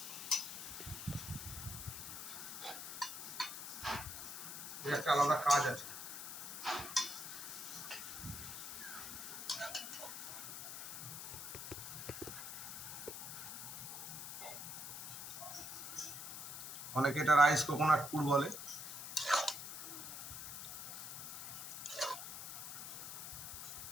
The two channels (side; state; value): left; noise; hiss, 7 dB below the sound